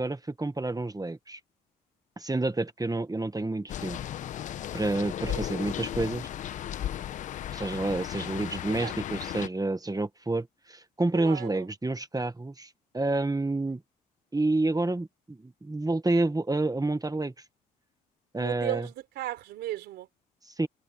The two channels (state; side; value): normal; both; correlation 0.80